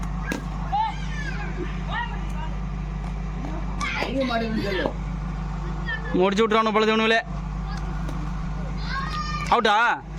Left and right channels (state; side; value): identical; both; correlation 1.00